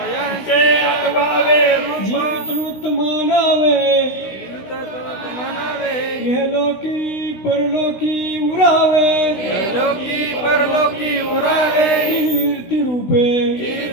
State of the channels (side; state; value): right; late; 16 ms